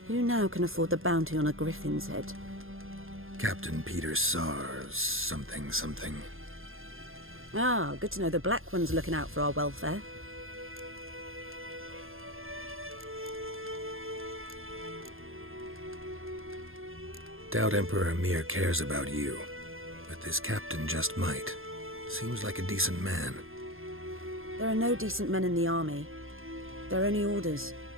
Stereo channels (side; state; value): left; late; 0.60 ms